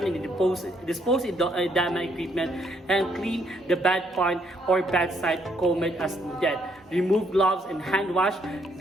and dispose edema equipment and clean the bedpan or bedside comb as needed. Remove gloves and hand wash.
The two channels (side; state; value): both; normal; correlation 0.70